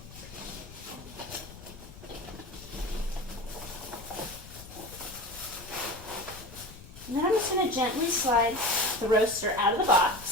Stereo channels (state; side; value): noise; left; rumble, 16 dB below the sound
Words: And then I'm just going to gently slide the roaster out of the